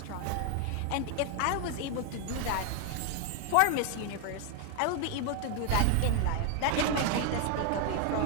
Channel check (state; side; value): different; both; correlation 0.01